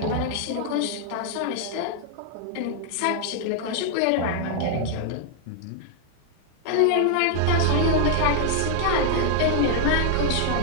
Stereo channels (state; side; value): different; both; correlation 0.00